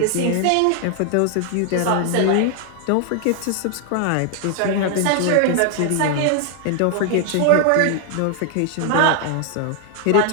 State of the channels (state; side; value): different; both; correlation 0.00